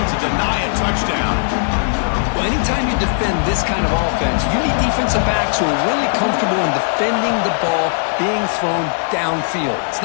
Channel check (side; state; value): right; silent; 61 dB below the other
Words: to deny a touchdown. Well, anytime you defend this kind of offense, you need defensive backs who are really comfortable in defending the ball being thrown downfield. It's